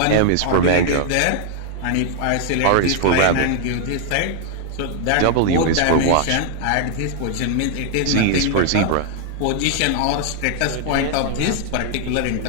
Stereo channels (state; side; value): different; both; correlation -0.01